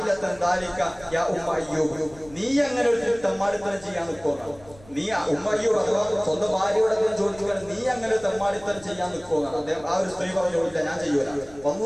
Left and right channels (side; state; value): left; noise; hum, 24 dB below the sound